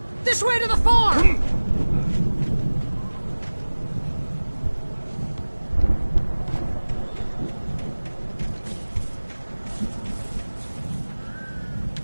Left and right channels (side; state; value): both; inverted; correlation -1.00